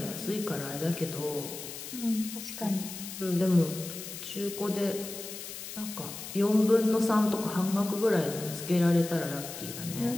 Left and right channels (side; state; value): left; noise; hiss, 10 dB below the sound